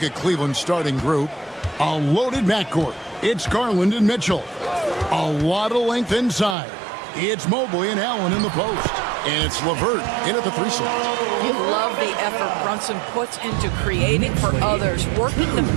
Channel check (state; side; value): drops out; left; at 6.6 s